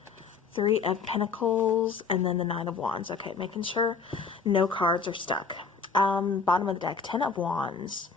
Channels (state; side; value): quieter; right; 5.2 dB